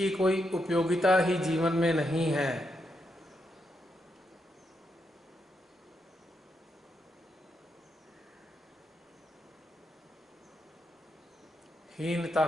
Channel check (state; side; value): normal; both; correlation 0.82